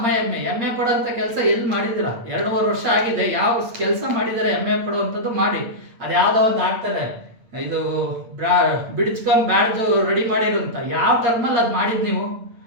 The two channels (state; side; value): late; left; 8.6 ms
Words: MA ಪಡೋಂಥ ಕೆಲಸ ಎಲ್ಲಿ ಮಾಡಿದ್ದೀರಾ? 2.5 ವರ್ಷ ಆಗಿದೆ. ಯಾವ ಕೆಲಸ ಮಾಡಿದ್ದಾರೆ MA ಪಡುವಂಥದ್ದು? ಮಾಡಿ. ಅದು ಯಾವುದೋ ಒಂದು ಹಾಕ್ತಾರೆ, ಇದು ಬ್ಯಾಡ್ಜ್ ರೆಡಿ ಮಾಡಿರು ಅಂತ. ಯಾವ ಟರ್ಮಲ್ಲಿ ಅದು ಮಾಡಿದ್ದು ನೀವು?